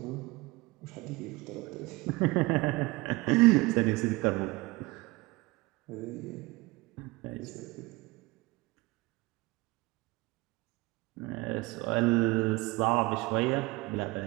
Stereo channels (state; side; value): quieter; left; 22.8 dB